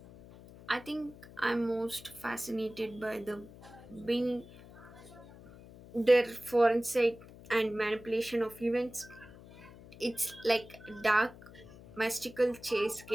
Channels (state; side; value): noise; left; hum, 19 dB below the sound